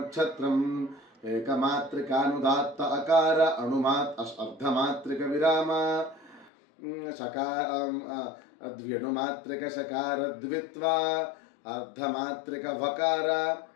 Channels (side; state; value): right; drops out; at 6.5 s